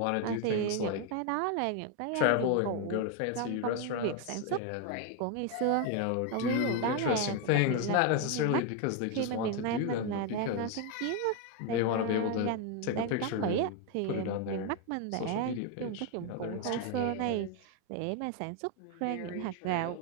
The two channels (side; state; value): both; different; correlation 0.01